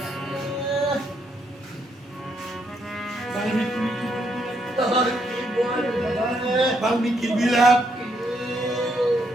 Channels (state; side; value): normal; both; correlation 0.75